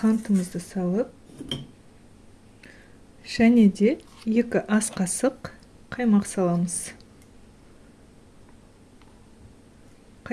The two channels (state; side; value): identical; both; correlation 1.00